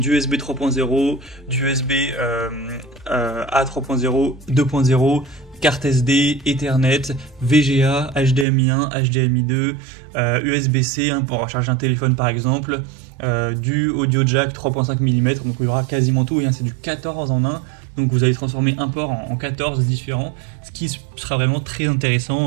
USB 3.0, du USB A 3.0, 2.0, carte SD, Ethernet, VGA, HDMI 1, HDMI 2, USB-C hein, pour recharger un téléphone par exemple, du audio jack 3.5 mm, donc il y aura quasiment tout, hein, c'est du 14 en 1, donc vous allez transformer un port en 14 différents, ce qui sera vraiment très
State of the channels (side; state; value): left; drops out; at 8.5 s